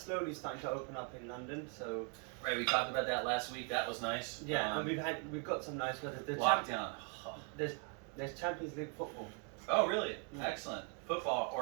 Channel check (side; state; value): left; quieter; 38.6 dB